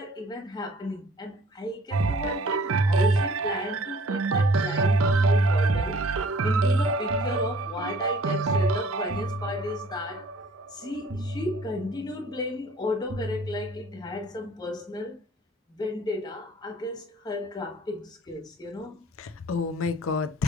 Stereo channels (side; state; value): both; normal; correlation 0.53